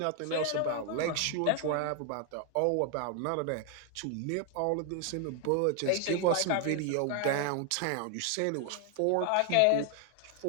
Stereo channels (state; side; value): different; both; correlation 0.00